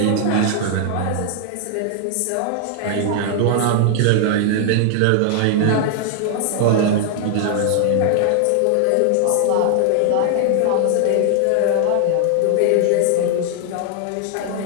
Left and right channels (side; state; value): both; different; correlation 0.00